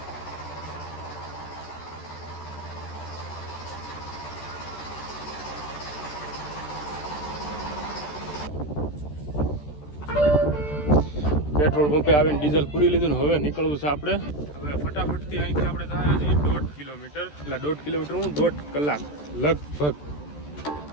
પેટ્રોલ પંપે આવીને ડીઝલ પૂરી લીધું ને હવે નીકળવું છે આપણે. હવે ફટાફટથી અહીંથી આપણે જાય છીએ 1.5 કિલોમીટર, એટલે 1.5 કિલોમીટર હું 1.5 કલાક લગભગ,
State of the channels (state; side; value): late; right; 14 ms